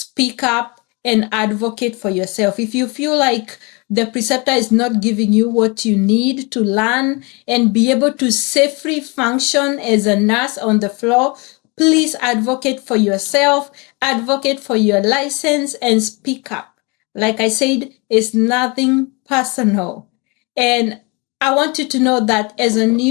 up and advocate for yourself. If you feel like the preceptor is not giving you what you need to learn and be able to safely function as a nurse on the floor, please advocate for yourself, advocate for your license, and speak up. Like I said, it's nothing personal. And I want you to know that as a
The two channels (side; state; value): right; quieter; 29.1 dB